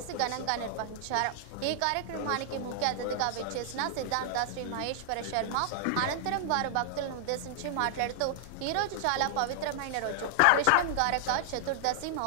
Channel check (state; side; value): different; both; correlation -0.01